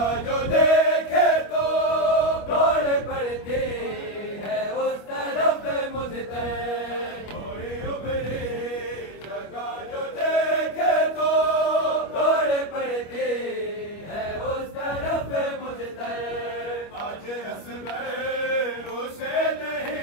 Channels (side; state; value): right; late; 25 ms